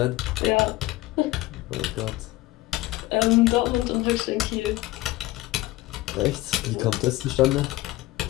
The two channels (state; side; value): quieter; right; 18.0 dB